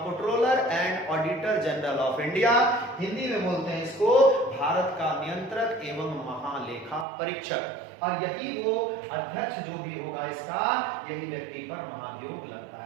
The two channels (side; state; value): left; drops out; at 7.1 s